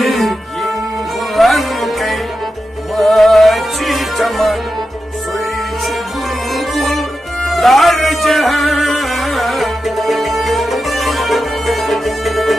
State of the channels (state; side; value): normal; both; correlation 0.90